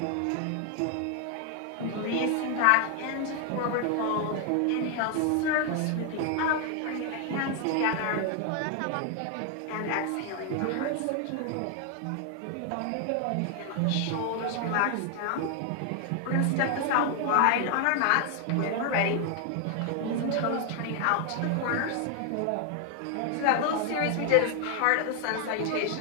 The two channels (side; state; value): both; different; correlation 0.00